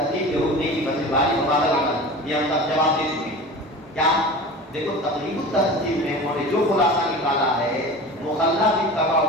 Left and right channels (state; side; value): normal; both; correlation 0.35